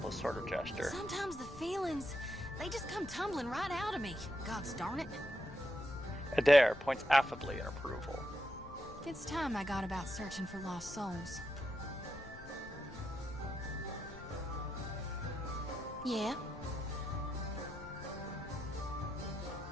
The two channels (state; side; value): noise; left; rumble, 15 dB below the sound